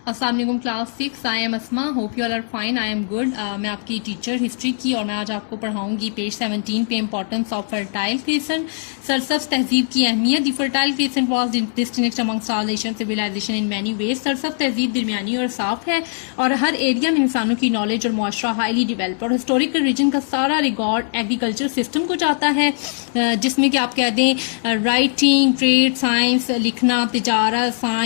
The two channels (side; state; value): right; silent; 65 dB below the other